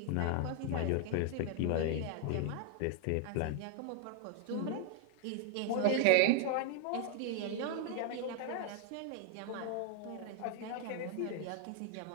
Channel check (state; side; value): different; both; correlation 0.00